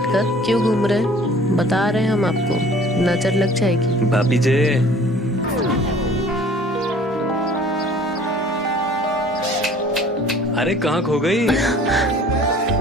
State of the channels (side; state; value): both; normal; correlation 0.50